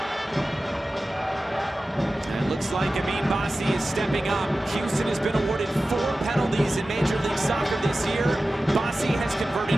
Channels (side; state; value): both; normal; correlation 0.95